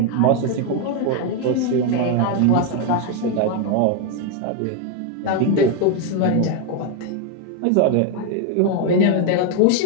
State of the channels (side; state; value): both; different; correlation 0.01